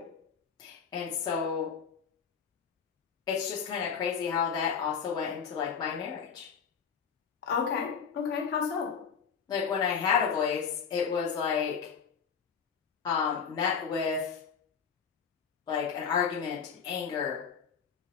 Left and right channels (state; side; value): quieter; right; 6.6 dB